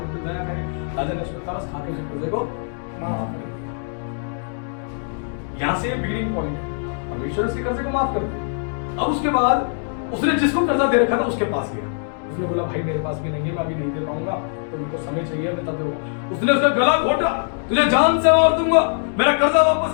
पर दया करे। राजा ने उसको तरस खा के उस कर्जे को माफ कर दिया। यहाँ से बिगिनिंग पॉइंट है, परमेश्वर उसके कर्जे को माफ कर दिया। अब उसके बाद उसने जिसको कर्जा दे रखा था उसके पास गया, उसने बोला भाई मेरे पास भी नहीं है, मैं अभी नहीं दे पाऊंगा, तो मेरे को समय चाहिए, मैं तब दूंगा। उसने उसका गला घोटा, तुझे जान से मार दूंगा, मेरा कर्जा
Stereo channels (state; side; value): silent; right; digital silence